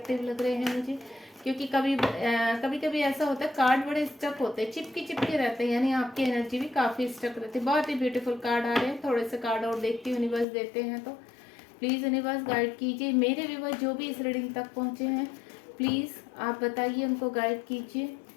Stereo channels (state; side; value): drops out; right; at 10.5 s